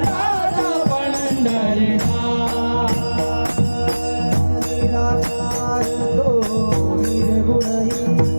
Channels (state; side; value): inverted; both; correlation -1.00